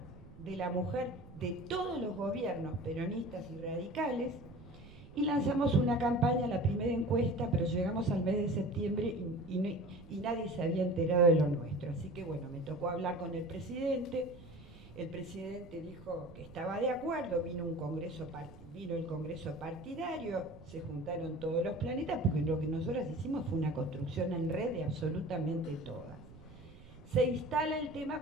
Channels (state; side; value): noise; right; rumble, 19 dB below the sound